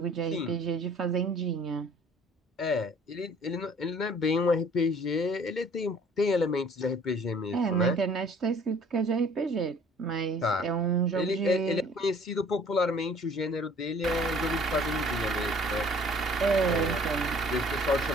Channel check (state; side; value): normal; both; correlation 0.53